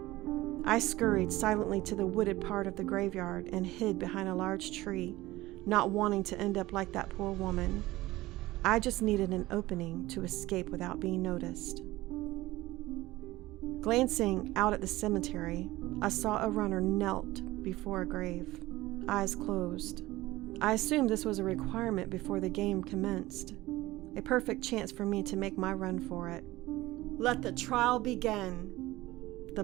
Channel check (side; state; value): left; quieter; 18.1 dB